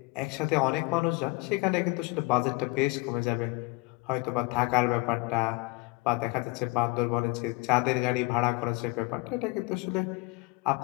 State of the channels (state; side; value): quieter; right; 25.1 dB